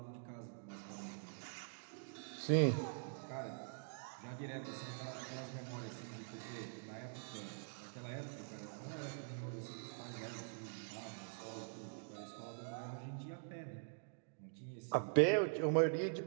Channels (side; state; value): left; silent; digital silence